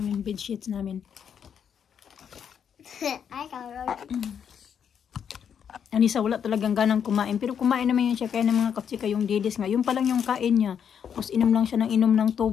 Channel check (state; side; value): quieter; right; 8.0 dB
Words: bed sheets namin. I got rosy. Anissa, wala talagang ganang kumain. Pero kumain naman yun siya. Kaya ng mga katsika yung didis nga. Yung pa lang yung kain niya. Tapos inom lang siya ng inom ng